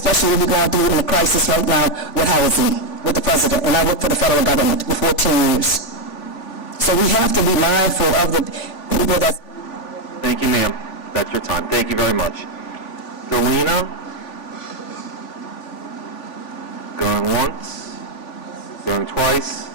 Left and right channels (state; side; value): late; right; 3.5 ms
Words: we're going through in a crisis right now with housing, with the president, and I work for the federal government for 14 years. So we have to be mindful of the people that... Thank you, ma'am. That's your time. Thank you very much. Delina? Going once? Going twice?